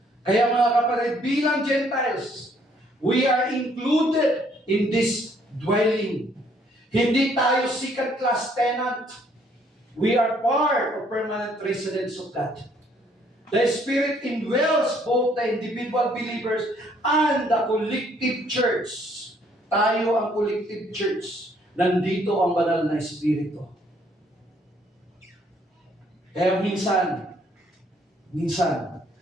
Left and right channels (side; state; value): both; normal; correlation 0.65